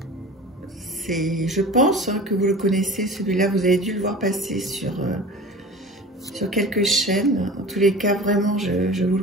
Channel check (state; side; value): normal; both; correlation 0.37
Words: Je pense hein, que vous le connaissez, celui-là, vous avez dû le voir passer sur quelques chaînes. En tous les cas, vraiment, je vous le